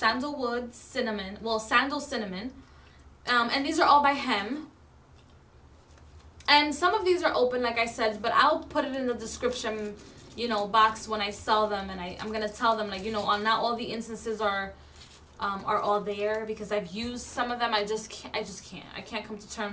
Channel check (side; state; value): both; identical; correlation 1.00